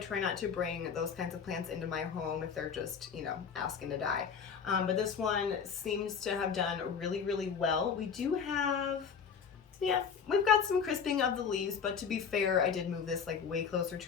not to bring those kinds of plants into my home if they're just, asking to die. But this one seems to have done really well. We do have, we've got some crisping of the leaves, but to be fair, I did move this like way closer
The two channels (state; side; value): quieter; right; 6.6 dB